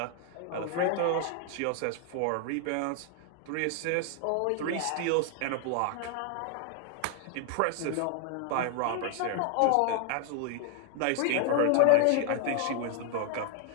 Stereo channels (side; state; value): both; different; correlation 0.00